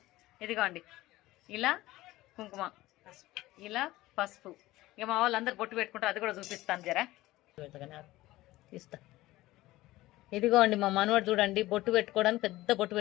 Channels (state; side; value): quieter; right; 17.5 dB